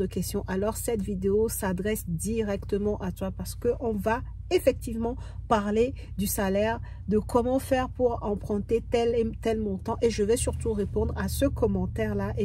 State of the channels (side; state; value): both; identical; correlation 1.00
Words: questions, alors cette vidéo s'adresse directement à toi parce qu'on va effectivement parler du salaire, de comment faire pour emprunter tel et tel montant, et je vais surtout répondre à ce commentaire là